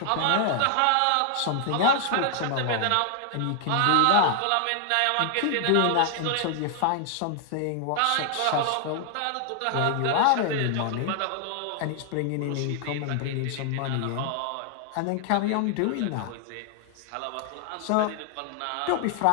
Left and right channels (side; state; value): both; different; correlation 0.00